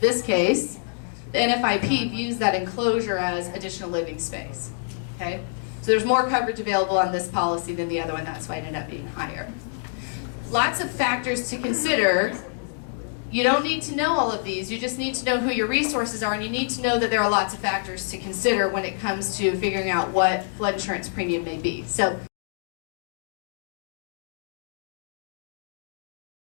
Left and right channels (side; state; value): right; silent; digital silence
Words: NFIP views that enclosure as additional living space. Okay? So there's more coverage available on this policy than the other one. That's why it ended up being higher. Lots of factors to consider. You don't need to know all of these. You just need to know who your resources are, and you need to know that there are lots of factors to consider when it comes to figuring out what flood insurance premium may be. So